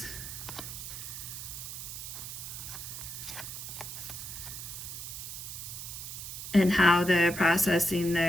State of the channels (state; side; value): noise; right; hiss, 8 dB below the sound